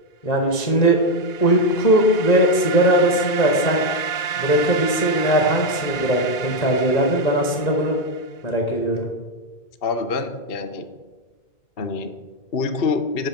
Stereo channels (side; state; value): right; late; 1.9 ms